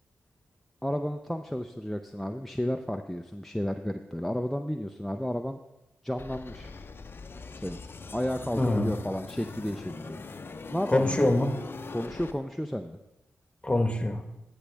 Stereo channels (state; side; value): normal; both; correlation 0.96